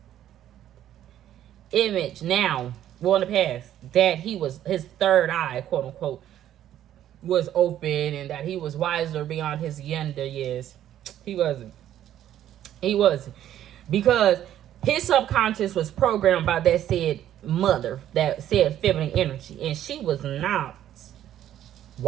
image now, well, in the past, that he was, his third eye, quote unquote, was open and that he was wiser beyond his younger years. He wasn't. He wasn't. Because his subconscious was programmed by that said mother, that said feminine energy. And she was not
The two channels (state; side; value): quieter; left; 11.6 dB